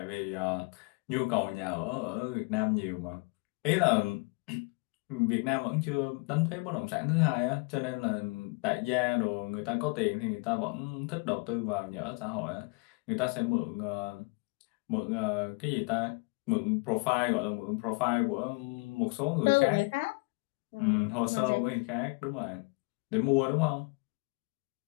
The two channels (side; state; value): right; quieter; 30.3 dB